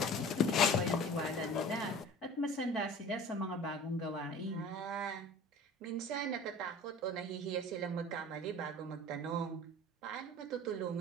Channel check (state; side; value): normal; both; correlation 0.42